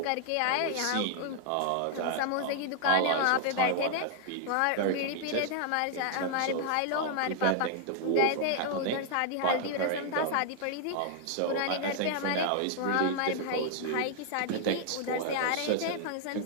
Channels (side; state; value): both; different; correlation 0.00